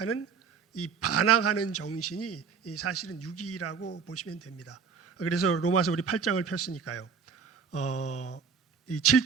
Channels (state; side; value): quieter; left; 6.0 dB